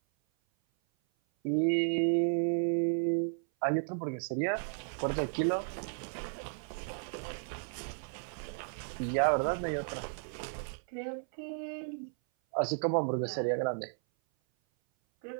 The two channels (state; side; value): silent; left; 55 dB below the other